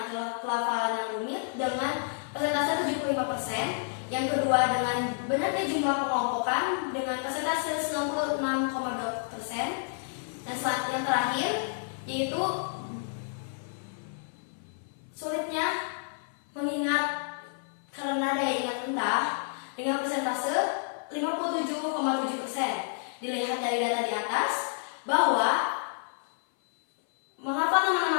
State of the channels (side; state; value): right; silent; 58 dB below the other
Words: adalah pelafalan yang rumit dengan persentase 75%. Yang kedua dengan banyaknya jumlah pengelompokan dengan persentase 96,2%. Dan yang terakhir yaitu sulitnya mengingat karena daya ingat rendah dengan persentase 57,7%. Dilihat dari data di atas bahwa menghafal nama-nama